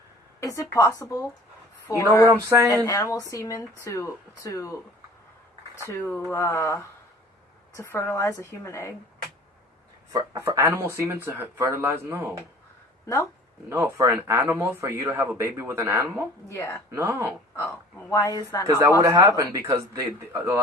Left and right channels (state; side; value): normal; both; correlation 0.46